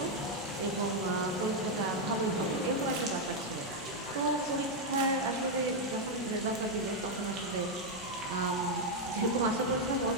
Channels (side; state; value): both; normal; correlation 0.01